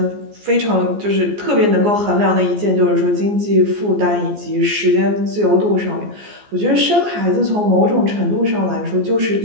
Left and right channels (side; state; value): left; late; 14 ms